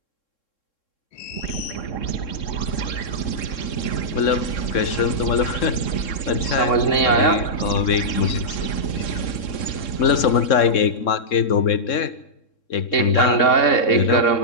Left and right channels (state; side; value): late; right; 3.7 ms